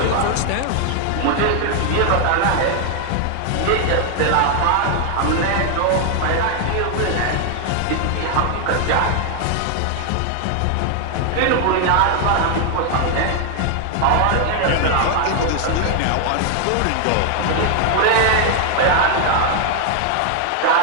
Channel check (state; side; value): different; both; correlation 0.00